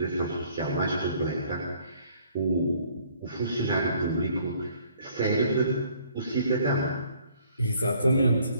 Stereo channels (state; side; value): inverted; both; correlation -0.60